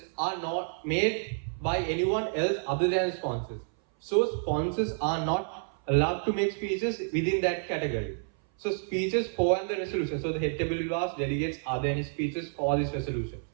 are not made by anyone else other than sponsors. So sponsors are not allowed to make speeches within that category. So speeches for and the resolution. So the head table will ask delegates, are there any speeches for this resolution?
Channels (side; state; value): left; silent; 58 dB below the other